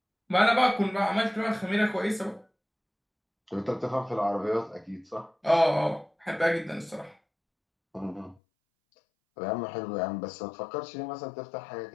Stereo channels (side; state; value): right; drops out; at 8.4 s